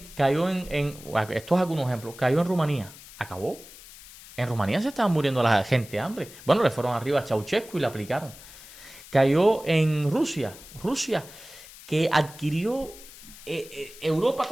es algunos ejemplos. Cayó en Rumanía. Acabó. En Rumanía se estaban muriendo la gente de hambre. Bueno, le fueron arriba a Ceausescu y le aplicaron. Cayó en Rusia. Rusia, que adquirió Europa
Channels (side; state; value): left; noise; hiss, 18 dB below the sound